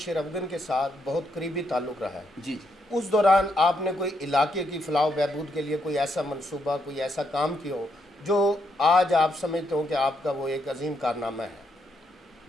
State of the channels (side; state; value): both; normal; correlation 0.77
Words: افغان کے ساتھ بہت قریبی تعلق رہا ہے، جی جی اس دوران آپ نے کوئی علاقے کی فلاح و بہبود کے لیے کوئی ایسا منصوبہ، کوئی ایسا کام کیا ہو جو آج آپ سمجھتے ہو کہ آپ کا وہ ایک عظیم کارنامہ ہے؟